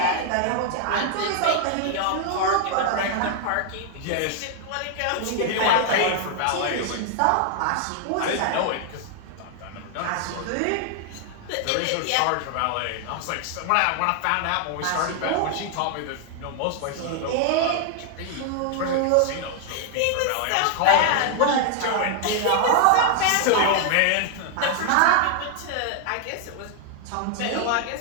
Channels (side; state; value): both; different; correlation 0.00